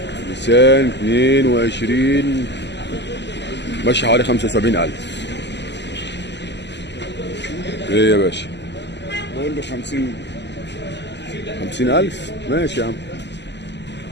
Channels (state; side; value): late; right; 0.50 ms